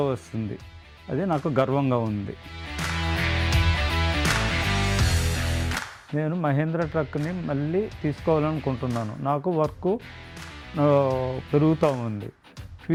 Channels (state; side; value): identical; both; correlation 1.00